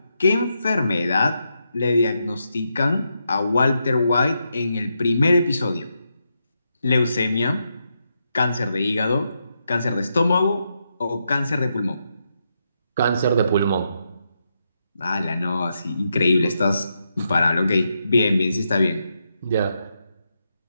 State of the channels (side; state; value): both; inverted; correlation -0.83